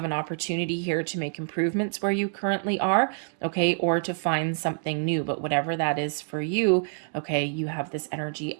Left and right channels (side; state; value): left; silent; digital silence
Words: an opportunity here to make improvements where you currently are, okay, or to find something new. But whatever that is for you, okay, you have this energy